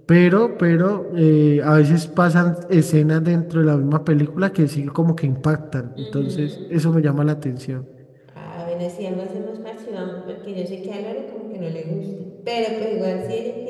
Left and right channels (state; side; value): identical; both; correlation 1.00